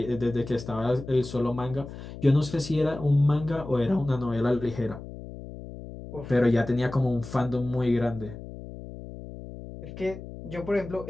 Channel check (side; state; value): left; noise; hum, 12 dB below the sound